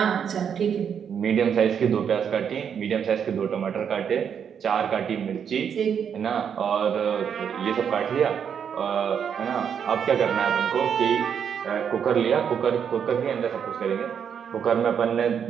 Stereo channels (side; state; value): left; quieter; 7.7 dB